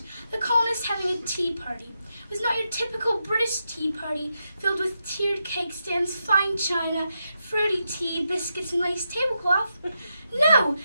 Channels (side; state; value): both; inverted; correlation -0.85